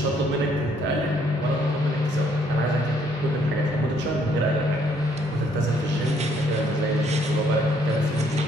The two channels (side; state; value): left; noise; rumble, 28 dB below the sound